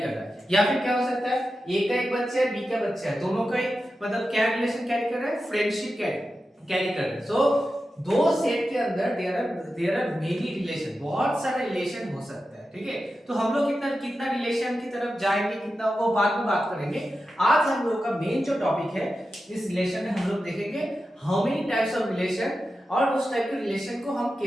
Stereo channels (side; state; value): both; normal; correlation 0.91